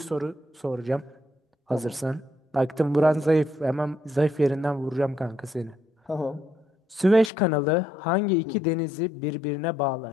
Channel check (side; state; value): right; drops out; at 7.3 s